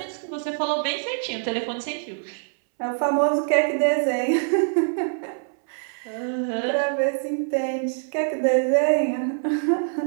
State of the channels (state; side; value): silent; left; 62 dB below the other